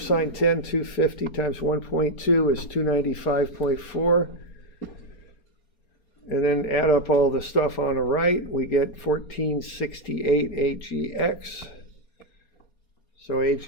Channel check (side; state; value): right; late; 4.3 ms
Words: 10, 250 times 1.2 is 295.4. And then add up all the stuff on the right, we get 1468 AGX. So